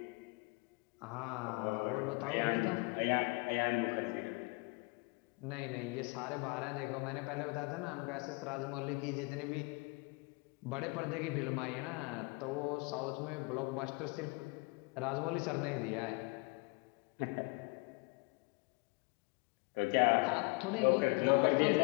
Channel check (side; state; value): right; quieter; 28.6 dB